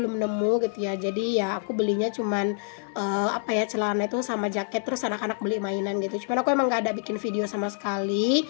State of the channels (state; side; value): silent; right; digital silence